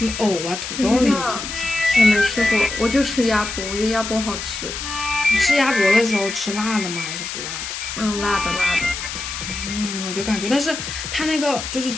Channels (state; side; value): noise; left; hiss, 6 dB below the sound